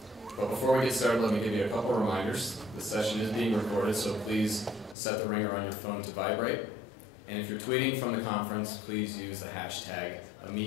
But before we get started, let me give you a couple reminders. The session is being recorded, so please set the ringer on your phone to vibrate. And if you're tweeting from the conference, please use the hashtag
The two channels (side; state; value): right; drops out; at 5.0 s